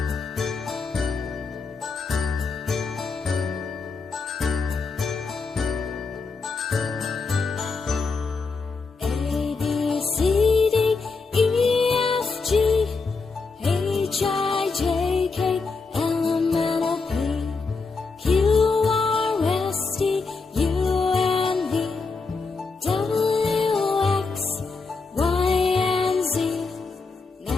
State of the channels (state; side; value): quieter; right; 4.3 dB